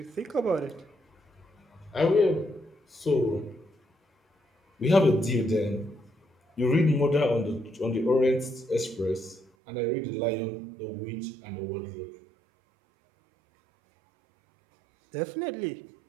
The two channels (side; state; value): left; drops out; at 9.5 s